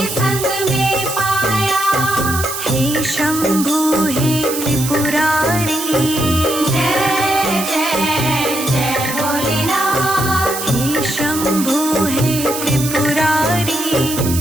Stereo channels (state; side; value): noise; right; hiss, 6 dB below the sound